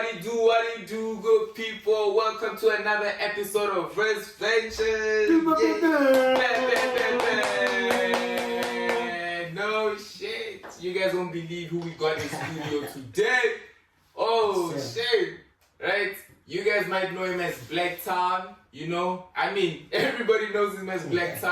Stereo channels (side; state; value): both; identical; correlation 1.00